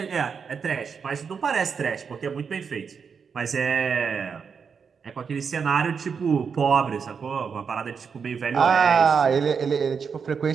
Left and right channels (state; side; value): quieter; left; 6.1 dB